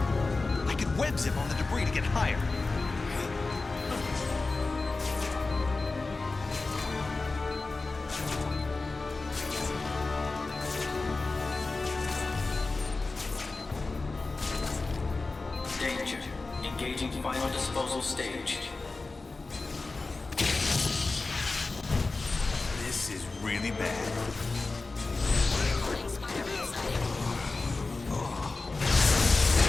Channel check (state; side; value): quieter; right; 3.6 dB